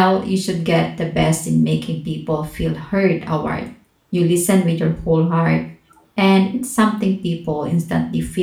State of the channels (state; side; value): identical; both; correlation 1.00